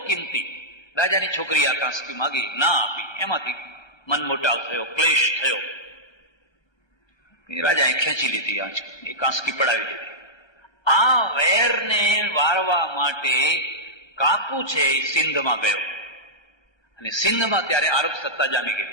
કિંમતી. રાજાની છોકરી આ કાંસકી માગી, ના આપી. એમાંથી મનમોટાવ થયો, ક્લેશ થયો. રાજાએ ખેંચી લીધી, એ કાંસકી પડાવી દીધી. આ વેરને વારવા માટે કાકુ છે એ સિંધમાં ગયો. અને સિંધમાં ત્યારે આરબ સત્તા જામી ગઈ.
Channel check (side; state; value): right; late; 1.3 ms